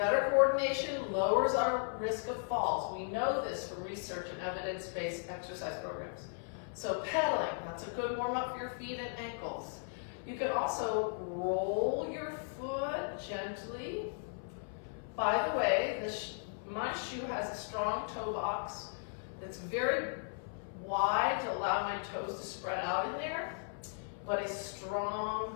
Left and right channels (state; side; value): silent; right; 53 dB below the other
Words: coordination lowers our risk of falls. We know this from research and evidence-based exercise programs. So pedaling, that's a good warm-up for your feet and ankles. You can also roll your foot gently. By the way, my shoe has a strong toe box that's very wide to allow my toes to spread out in there, but a